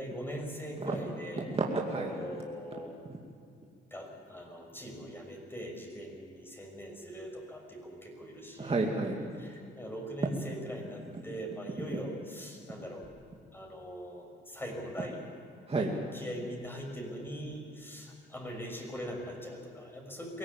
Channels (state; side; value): normal; both; correlation 0.63